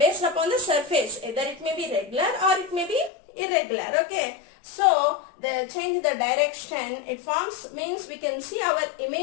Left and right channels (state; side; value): drops out; right; at 3.1 s